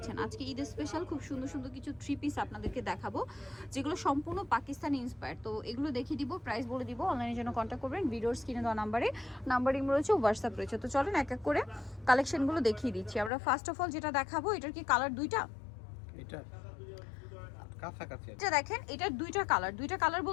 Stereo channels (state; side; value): drops out; right; at 13.3 s